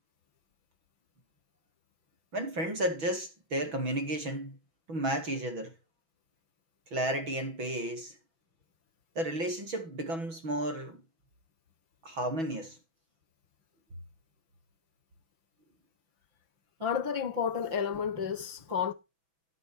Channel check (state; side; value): late; left; 6.1 ms